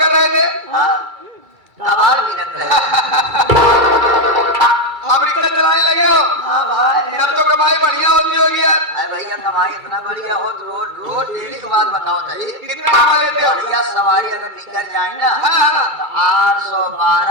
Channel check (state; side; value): late; left; 2.3 ms